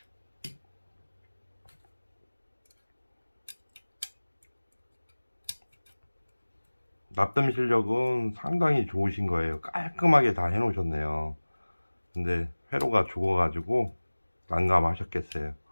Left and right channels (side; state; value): both; inverted; correlation -1.00